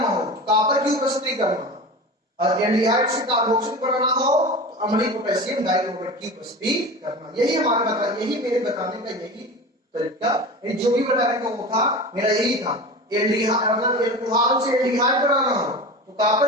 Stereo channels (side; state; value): both; normal; correlation 0.31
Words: हो कॉपर की उपस्थिति करना और एल्डिहाइड से कार्बोक्सिल बनाना हो तो अम्लीय पोटेशियम डाइक्रोमेट की उपस्थिति करना। यही हमारे बता, यही मेरे बताने का यही तरीका, जो भी बताने का वो था मेरा यही था। एल्डिहाइड मतलब एल्कोहल से एल्डिहाइड बनाना हो तो